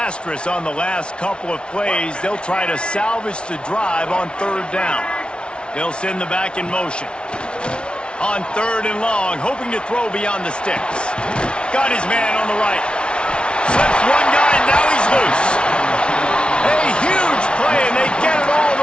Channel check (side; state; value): right; late; 0.057 ms